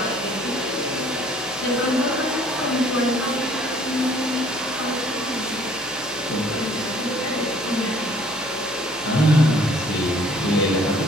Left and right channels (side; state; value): left; noise; hum, 26 dB below the sound